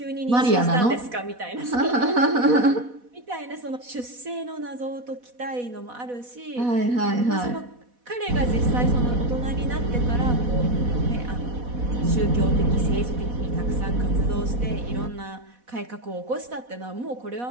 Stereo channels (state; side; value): late; left; 4.1 ms